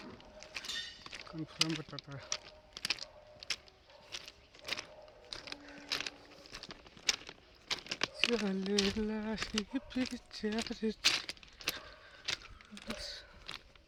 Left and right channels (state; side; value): identical; both; correlation 1.00